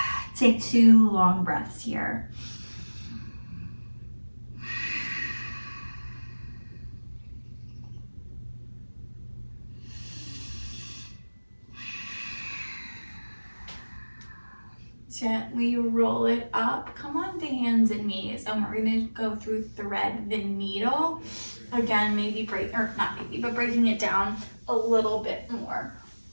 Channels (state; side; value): inverted; both; correlation -1.00